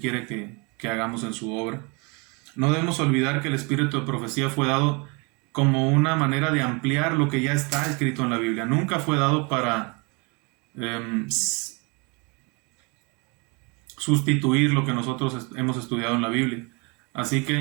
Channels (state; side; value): quieter; left; 30.6 dB